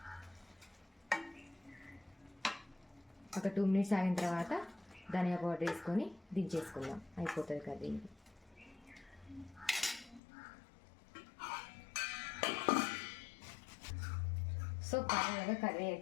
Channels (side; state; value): right; drops out; at 10.2 s